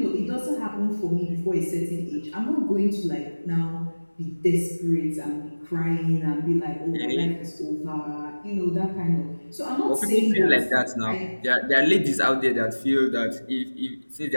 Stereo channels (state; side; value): inverted; both; correlation -1.00